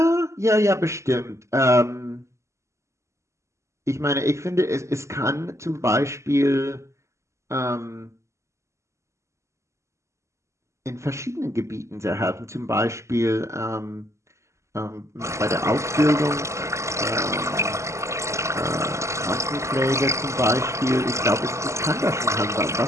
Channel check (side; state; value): left; late; 0.14 ms